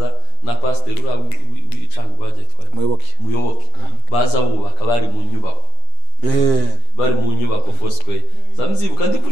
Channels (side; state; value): right; late; 8.8 ms